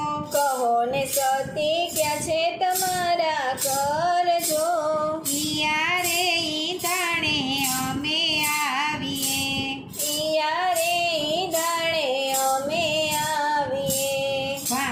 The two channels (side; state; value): both; identical; correlation 1.00